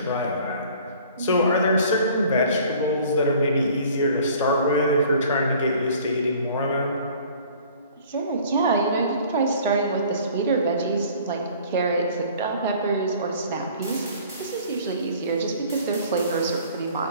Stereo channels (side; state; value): both; inverted; correlation -0.51